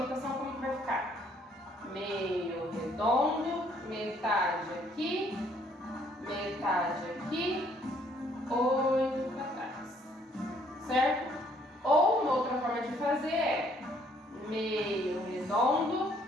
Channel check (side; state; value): both; normal; correlation 0.65